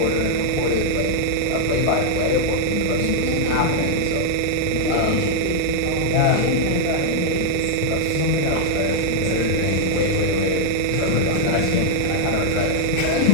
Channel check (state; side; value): different; both; correlation -0.01